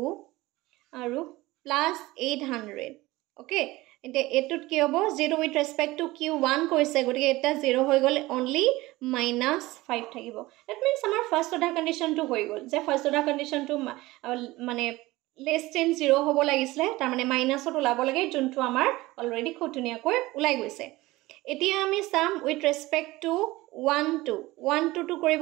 আৰু +800 okay এতিয়া এটুত কি হ'ব 0 উইথ ৰেসপেক্ট টু q1 কৈছে গতিকে এটা 0 হৈ গ'ল অনলি -5 থাকিব দ্যাট মিন্স আমাৰ ফাৰ্স্ট অৰ্ডাৰ কন্ডিশনটো হৈ গ'ল যে ফাৰ্স্ট অৰ্ডাৰ কন্ডিশনটো মানে less than 0 হ'ব লাগিছিলে তাৰ মানে মাইনাসত ওলাব লাগে যোনটো আমাৰ অলৰেডি খুব ধুনীয়াকৈ ওলাই গৈছে এতিয়া আমি সাম উইথ ৰেসপেক্ট টু 1 2 1 2 2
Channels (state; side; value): quieter; left; 19.4 dB